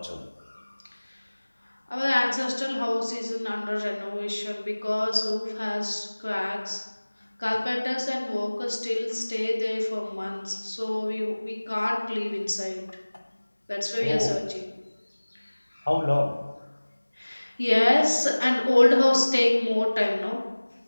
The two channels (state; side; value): inverted; both; correlation -1.00